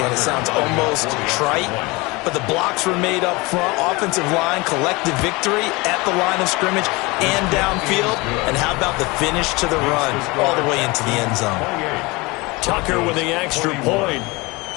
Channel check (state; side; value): quieter; right; 24.4 dB